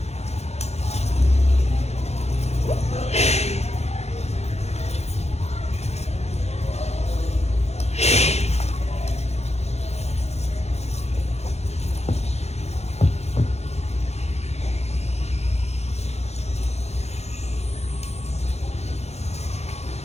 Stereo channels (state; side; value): late; right; 0.31 ms